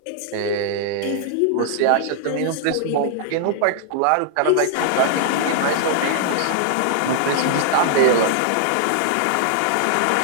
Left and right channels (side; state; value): both; different; correlation -0.01